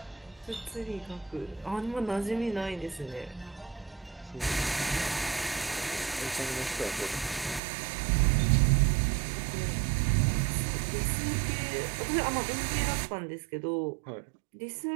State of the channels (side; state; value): left; drops out; at 7.6 s